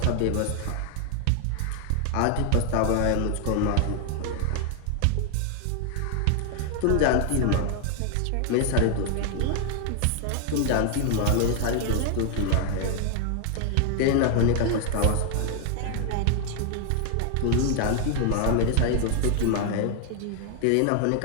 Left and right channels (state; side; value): different; both; correlation 0.01